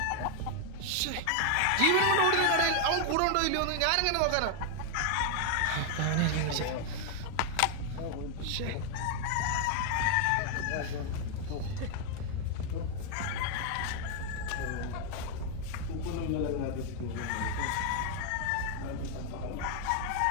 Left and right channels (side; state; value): both; different; correlation 0.00